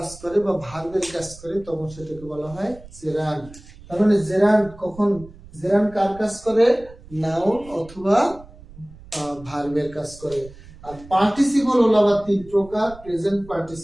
করে বা ভার্বের কাজ করে তখন সেটাকে বলা হয় জেরান্ড। তার মানে জেরান্ড কখন, জেরান্ড কার কাজ করে? নাউন অথবা ভার্বের কাজ করে। আর পার্টিসিপল হলো আবার তিন প্রকার, প্রেজেন্ট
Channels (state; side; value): noise; right; rumble, 20 dB below the sound